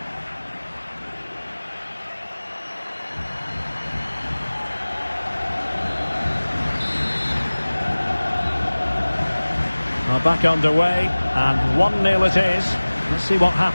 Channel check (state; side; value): inverted; both; correlation -1.00